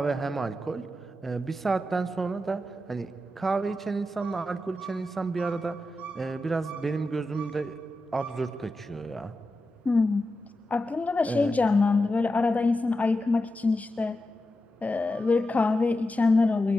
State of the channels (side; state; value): both; normal; correlation 0.90